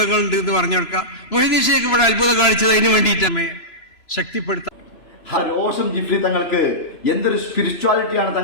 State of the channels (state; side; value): late; right; 3.0 ms